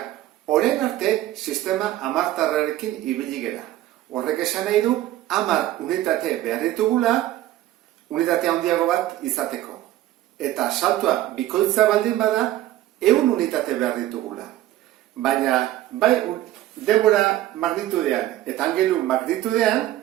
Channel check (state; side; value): quieter; left; 14.3 dB